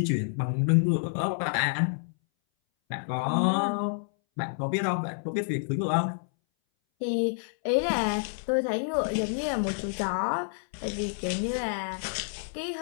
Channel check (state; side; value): silent; right; 59 dB below the other